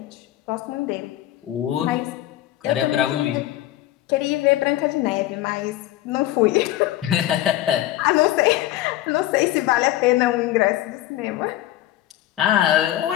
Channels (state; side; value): quieter; right; 14.6 dB